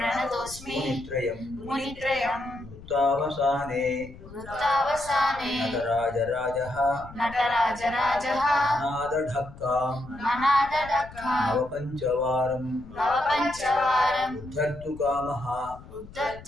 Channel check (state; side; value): noise; left; rumble, 17 dB below the sound